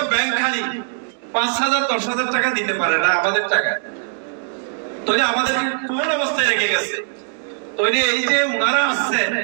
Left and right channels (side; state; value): left; silent; digital silence